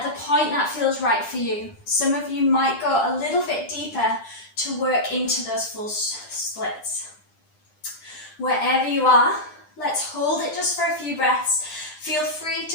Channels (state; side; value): late; right; 9.9 ms